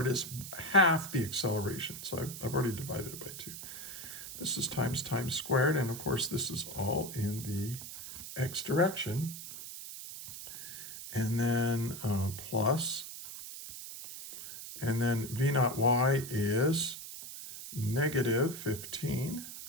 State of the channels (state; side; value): noise; right; hiss, 10 dB below the sound